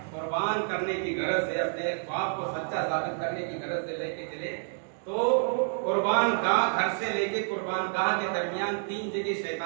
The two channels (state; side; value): silent; left; digital silence